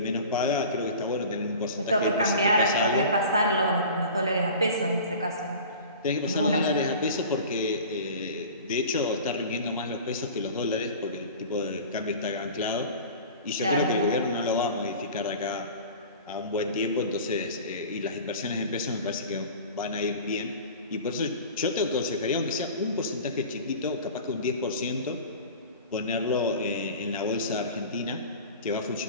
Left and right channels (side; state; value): both; inverted; correlation -0.39